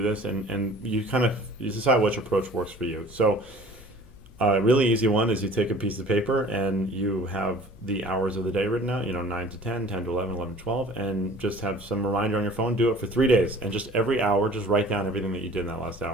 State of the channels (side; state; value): left; noise; hum, 22 dB below the sound